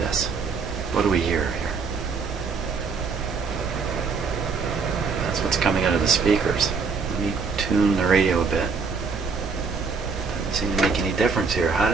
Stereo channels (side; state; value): left; quieter; 5.1 dB